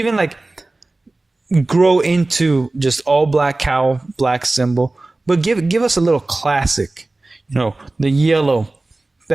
grow into just all black cowl, black symbol. But give us a little classic. The yellow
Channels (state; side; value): quieter; left; 3.0 dB